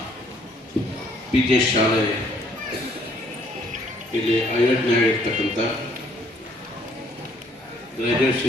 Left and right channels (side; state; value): both; normal; correlation 0.63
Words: PJ ಶಾಲೆ ಇಲ್ಲಿ ಆಯೋಜನೆಯಾಗಿರ್ತಕ್ಕಂಥ